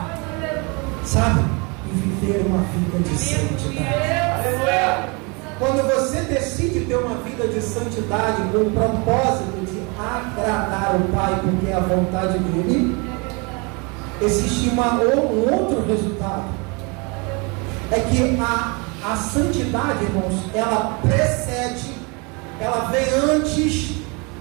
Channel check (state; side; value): quieter; left; 30.3 dB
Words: sabe? E viver uma vida de santidade. Quando você decide ter uma vida de santidade com o propósito de agradar o Pai, porque é a vontade dele, existe um outro resultado. É que a santidade, irmãos, ela precede, ela vem antes